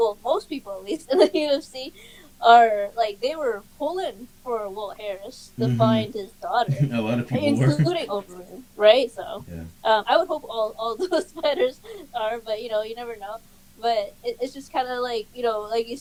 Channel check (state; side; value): identical; both; correlation 1.00